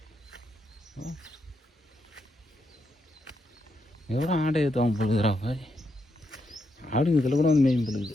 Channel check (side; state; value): both; normal; correlation 0.82